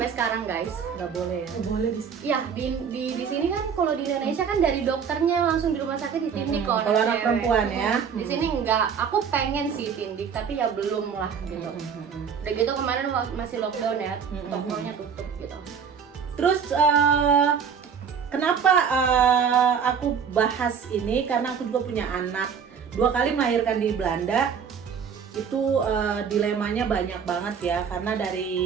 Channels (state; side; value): quieter; left; 6.9 dB